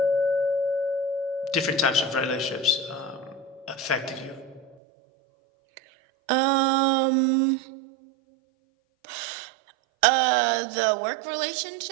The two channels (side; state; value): left; drops out; at 4.8 s